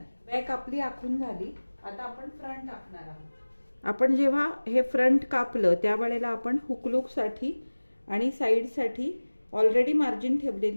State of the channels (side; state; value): both; inverted; correlation -1.00